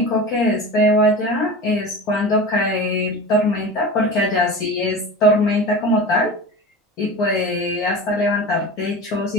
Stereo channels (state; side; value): normal; both; correlation 0.31